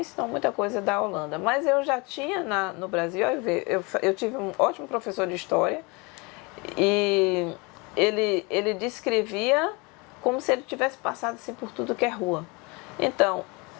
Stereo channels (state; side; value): quieter; right; 27.9 dB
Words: ensinou muita coisa da Holanda. Mas eu já tinha no Brasil, eu tive um ótimo professor de história e ele descrevia como se ele tivesse passado assim, por tudo que é rua. Então,